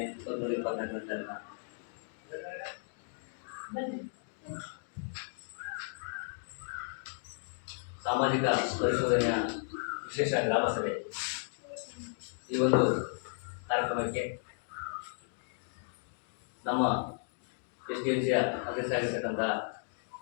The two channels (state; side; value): silent; right; digital silence